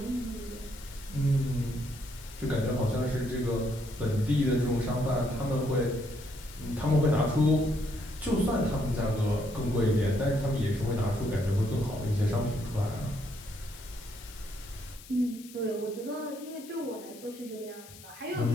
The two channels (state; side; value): noise; left; hiss, 19 dB below the sound